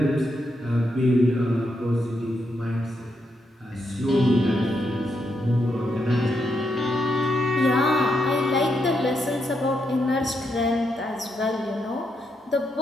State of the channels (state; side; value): normal; both; correlation 0.81